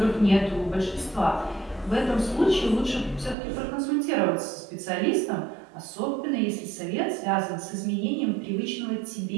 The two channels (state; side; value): drops out; left; at 3.4 s